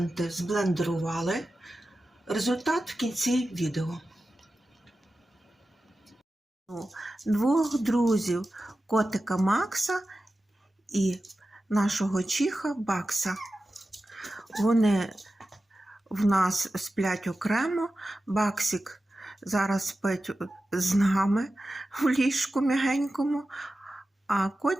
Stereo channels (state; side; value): normal; both; correlation 0.93